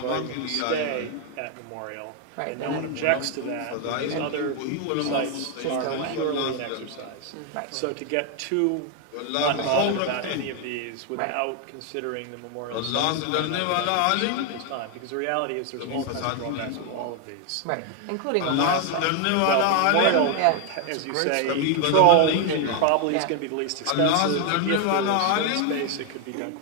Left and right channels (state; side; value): different; both; correlation 0.01